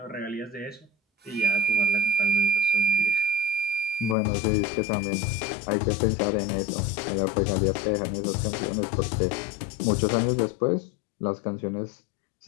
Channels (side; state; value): right; drops out; at 4.2 s